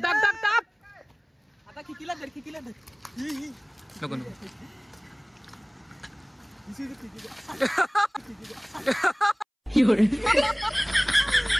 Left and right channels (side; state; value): both; identical; correlation 1.00